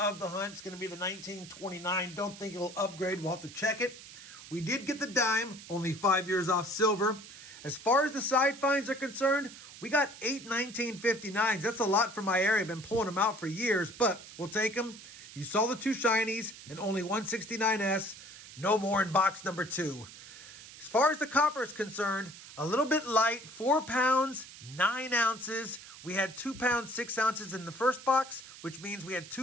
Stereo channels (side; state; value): right; noise; hiss, 16 dB below the sound